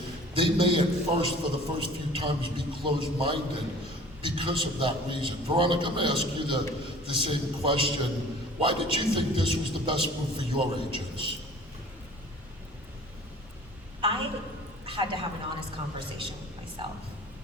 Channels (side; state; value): both; normal; correlation 0.47